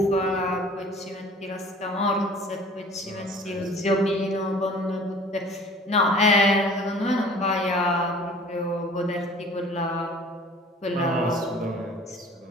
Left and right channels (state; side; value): normal; both; correlation 0.47